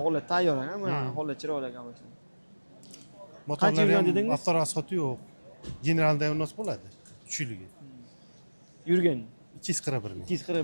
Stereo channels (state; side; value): inverted; both; correlation -1.00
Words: Holat tayyor ekan, mana holat chiroyli ekan mashina. Motorlar ham avtorasxoti yo'q. Generalda ham nos bo'ladi. Kuchligi. Yurgan 241 ming.